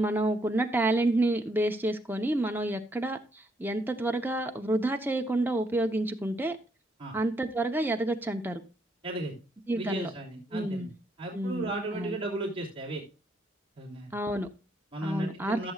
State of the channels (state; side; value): normal; both; correlation 0.74